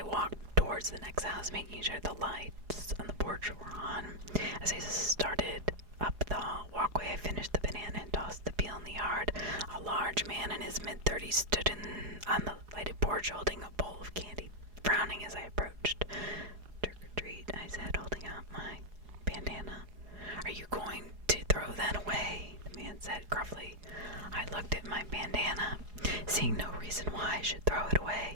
Towards the next house, making sure the lights on the porch were on. As I started up the walkway, I finished the banana and tossed the peel in the yard. A large man in his mid-30s stood on the lighted porch holding a bowl of candy, frowning as I approached. "Trick or treat," I said, holding out my bandana. Are you going to throw that away? The man said gruffly. I looked at my bandana, seeing no reason why I should throw it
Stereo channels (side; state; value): left; late; 4.8 ms